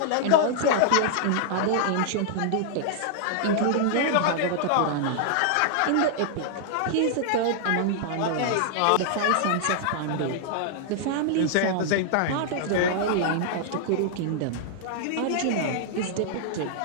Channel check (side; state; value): both; different; correlation -0.01